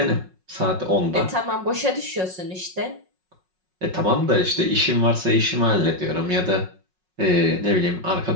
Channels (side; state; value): left; late; 5.4 ms